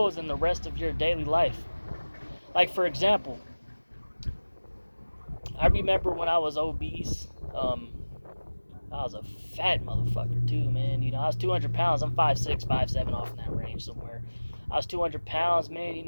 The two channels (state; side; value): inverted; both; correlation -1.00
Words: in the rest of your daily life. Like, for example, I remember when I was obese. I was a fat motherfucker too, man. I was 200 pounds. I'm 5'6", 5'7", off in that range somewhere. I was 200 pounds, man.